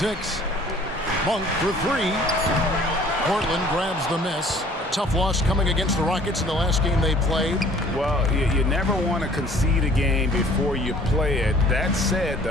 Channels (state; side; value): normal; both; correlation 0.53